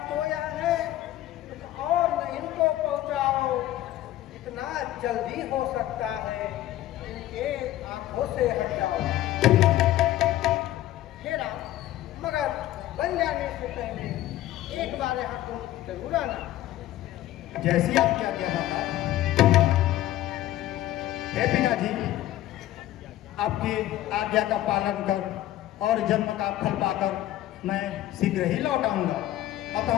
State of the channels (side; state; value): right; quieter; 14.2 dB